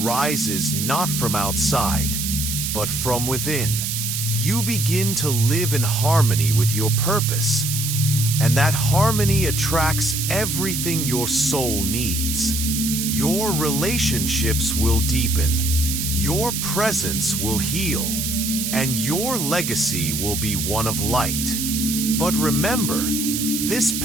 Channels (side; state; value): right; noise; hiss, 2 dB below the sound